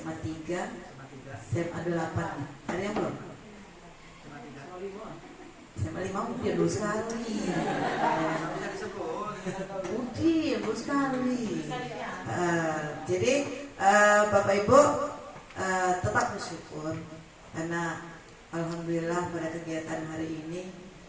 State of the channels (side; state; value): both; identical; correlation 1.00